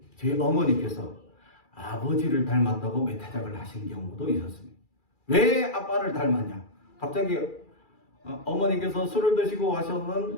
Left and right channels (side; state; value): right; late; 2.4 ms